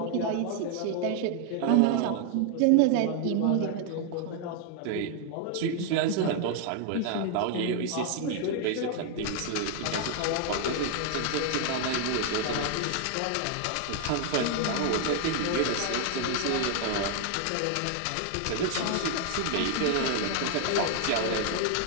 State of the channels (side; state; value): both; different; correlation 0.00